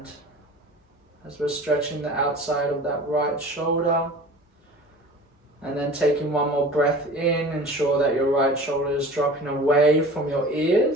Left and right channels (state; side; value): normal; both; correlation 0.40